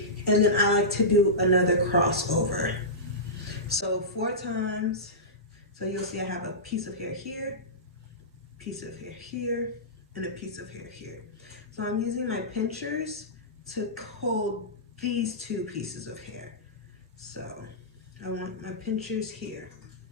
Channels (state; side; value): normal; both; correlation -0.17